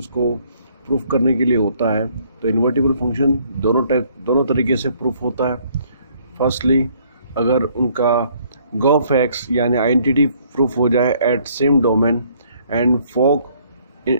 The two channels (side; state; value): both; inverted; correlation -0.64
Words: को प्रूफ करने के लिए होता है। तो इन्वर्टिबल फंक्शन दोनों तरीके से प्रूफ होता है। फर्स्टली, अगर उनका गॉफ एक्स यानी आइडेंटिटी प्रूफ हो जाए एट सेम डोमेन एंड फोक,